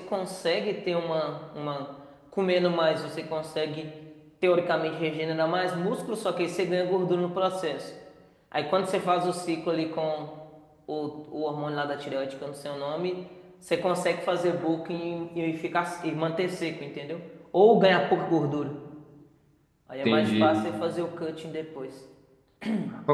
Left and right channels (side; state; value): both; identical; correlation 1.00